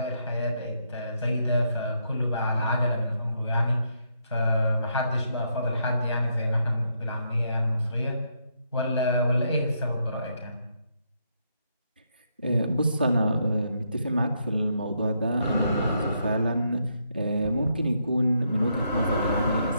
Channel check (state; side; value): inverted; both; correlation -0.77